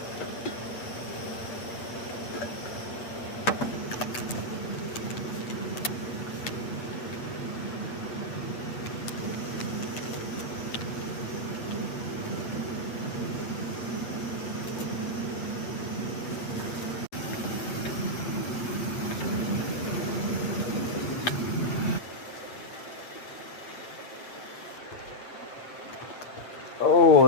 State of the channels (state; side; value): late; right; 8.3 ms